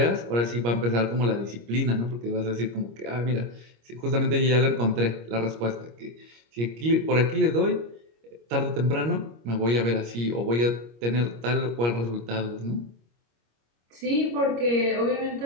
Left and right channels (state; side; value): late; left; 25 ms